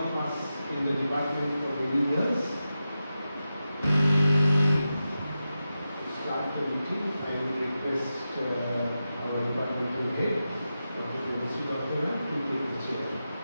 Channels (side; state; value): both; inverted; correlation -0.91